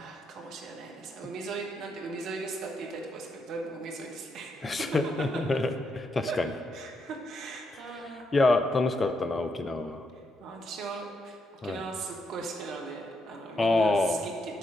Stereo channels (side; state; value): both; normal; correlation 0.79